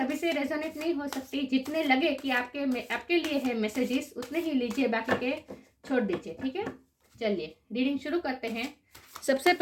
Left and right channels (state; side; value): identical; both; correlation 1.00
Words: से रेजोनेट नहीं हो सकती। जितने लगे कि आपके लिए है मैसेजेस, उतने ही लीजिए, बाकी के छोड़ दीजिए, ठीक है। चलिए रीडिंग शुरू करते हैं। सबसे